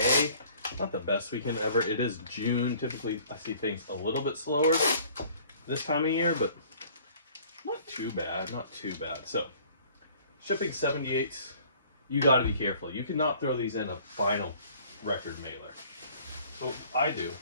Not the best weekend ever. It is June. Typically, I see things a little bit slower this time of year, but not too bad. Not too bad. So, shipping 78s, you got to be careful. You cannot throw these in a vinyl record mailer. So, what I do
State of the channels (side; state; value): both; inverted; correlation -0.54